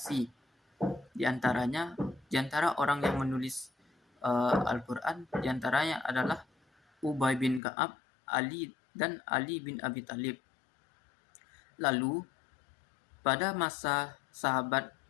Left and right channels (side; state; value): right; drops out; at 7.6 s